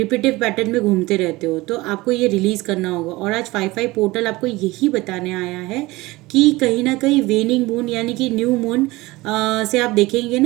पैटर्न में घूमते रहते हो, तो आपको ये रिलीज़ करना होगा। और आज 5/5 पोर्टल आपको यही बताने आया है कि कहीं ना कहीं वेनिंग मून यानी कि न्यू मून से आप देखेंगे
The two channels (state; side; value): quieter; left; 20.6 dB